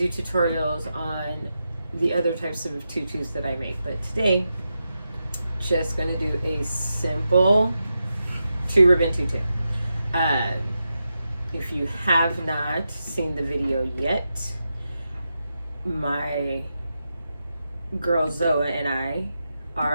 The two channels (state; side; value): inverted; both; correlation -0.88